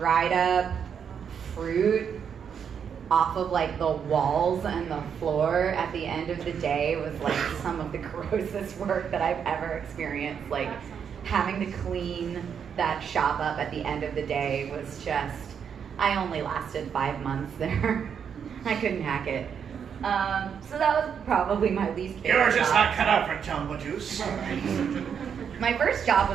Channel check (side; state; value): left; quieter; 7.4 dB